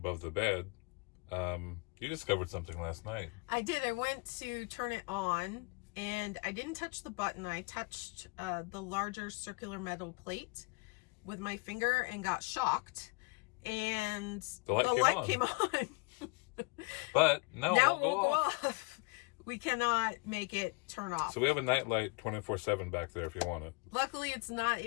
the bed, you discovered something last night. I did. I went to turn it on. And I didn't touch the button. I touched the larger circular metal plate with my finger and got shocked. And the light came on. But no, now it won't go off. We cannot make it turn off. So we have a night light 24/7 back there if you want it. Luckily, it's not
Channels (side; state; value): right; quieter; 29.1 dB